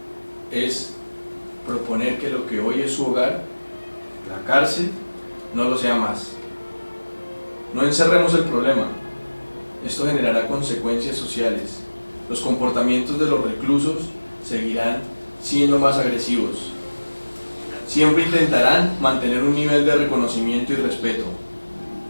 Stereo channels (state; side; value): inverted; both; correlation -1.00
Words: es proponer que lo que hoy es su hogar, la cárcel, no lo sea más. No encerremos el problema. Esto generará consecuencias sociales. Los comportamientos de los reclusos seguirán siendo más agresivos. Siempre intentarán mantener un nivel de reconocimiento y respeto,